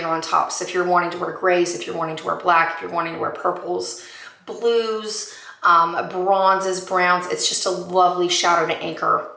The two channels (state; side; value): identical; both; correlation 1.00